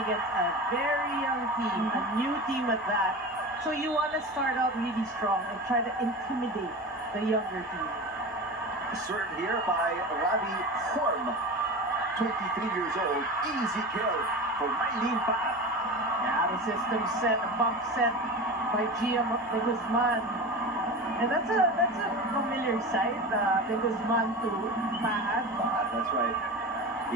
against a very young team, a new team at that. So you want to start out really strong and try to intimidate the younger team. Served here by Ravi Horm, 23 years old. Easy kill for Maylene Paat. Yeah, the system set, a bump set by Gia de Guzman. And that's a familiar sight, de Guzman to Paat. That's right.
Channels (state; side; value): normal; both; correlation 0.29